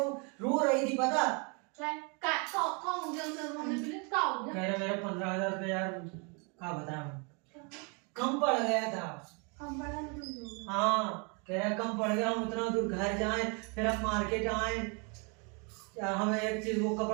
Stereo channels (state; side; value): quieter; left; 33.9 dB